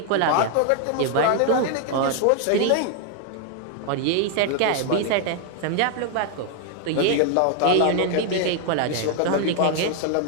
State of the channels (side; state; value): both; different; correlation 0.00